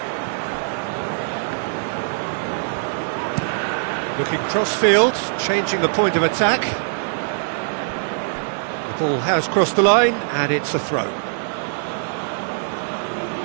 Looking cross-field, changing the point of attack. The ball has crossed the line, and it's a throw.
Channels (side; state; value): left; silent; 56 dB below the other